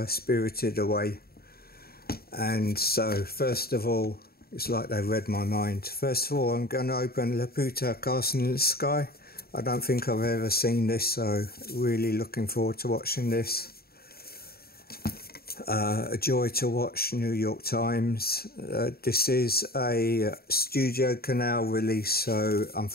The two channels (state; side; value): late; right; 0.45 ms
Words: Spirited Away. And so first of all, it's like they read my mind. First of all, I'm going to open Laputa, Castle in the Sky. I don't think I've ever seen this, so really looking forward to watching this. A joy to watch, New York Times. This is a Studio Canal release, so